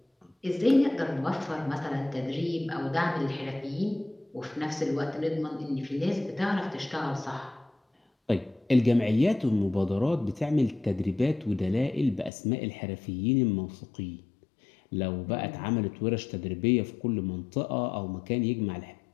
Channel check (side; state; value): right; drops out; at 12.3 s